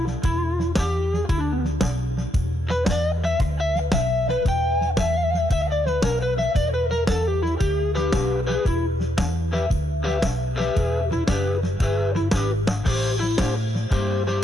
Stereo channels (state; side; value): normal; both; correlation 0.79